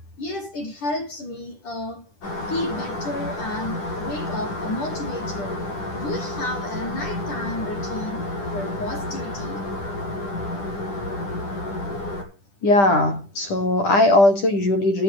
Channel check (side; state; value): right; late; 10 ms